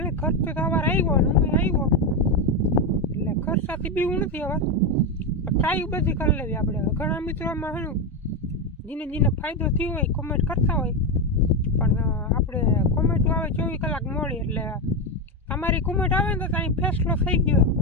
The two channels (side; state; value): both; normal; correlation 0.11